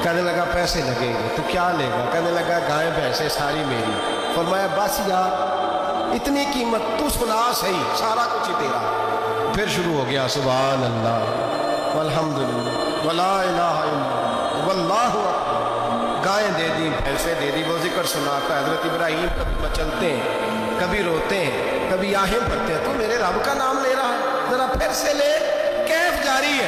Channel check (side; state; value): both; identical; correlation 1.00